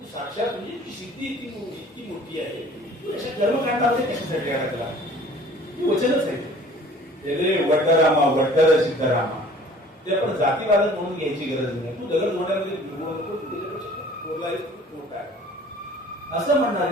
साक्षात म्हणजे ती सिद्धी इतकी मोठी आहे, तू अशा कर्मकांडामध्ये कशासाठी आला त्याला, ती वचनच आहे. ते वड्डरामा वड्डर सिद्धरामा, ते आपण जातीवादक म्हणून घ्यायची गरज नाही. तू दगड मोठ्यामध्ये मोठा आहे असं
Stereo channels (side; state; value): both; normal; correlation 0.50